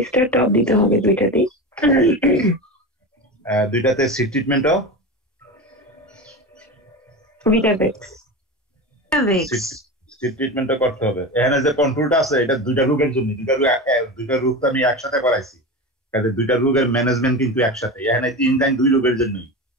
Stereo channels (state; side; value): normal; both; correlation 0.25